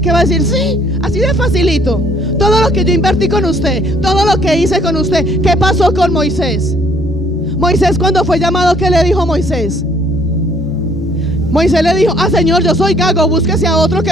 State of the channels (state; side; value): normal; both; correlation 0.62